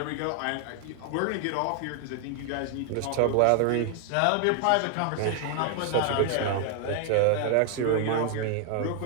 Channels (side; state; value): both; different; correlation 0.00